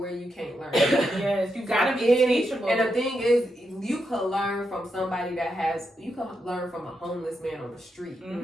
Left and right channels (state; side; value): normal; both; correlation 0.84